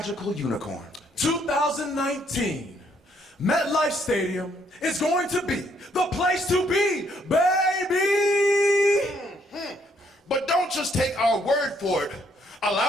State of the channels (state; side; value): normal; both; correlation 0.69